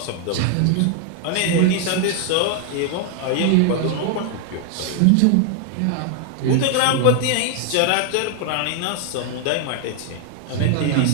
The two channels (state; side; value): different; both; correlation 0.00